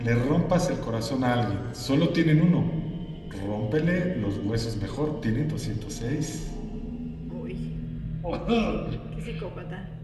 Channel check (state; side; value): identical; both; correlation 1.00